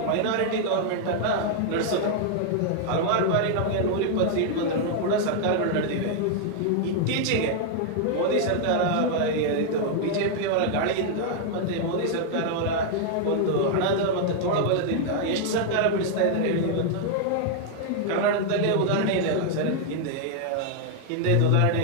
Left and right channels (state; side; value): different; both; correlation 0.00